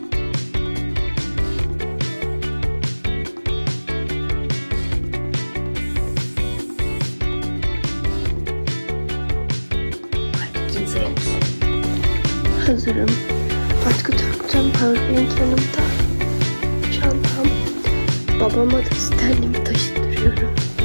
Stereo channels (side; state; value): both; inverted; correlation -1.00